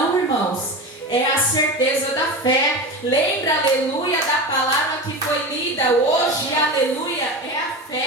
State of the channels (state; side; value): normal; both; correlation 0.26